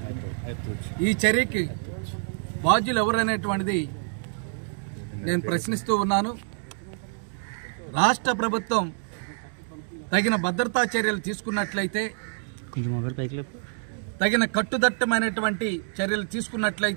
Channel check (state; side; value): silent; left; 60 dB below the other